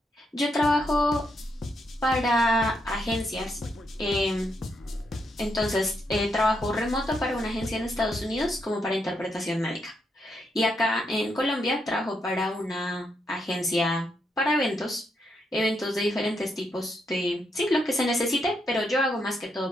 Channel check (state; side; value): normal; both; correlation 0.79